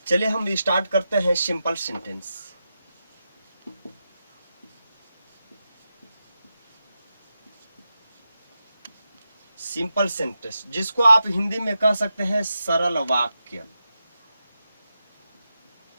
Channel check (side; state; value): both; inverted; correlation -0.89